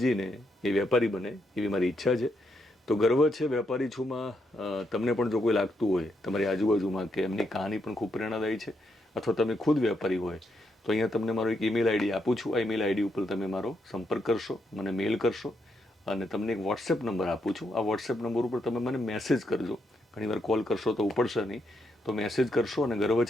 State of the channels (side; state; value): both; normal; correlation 0.79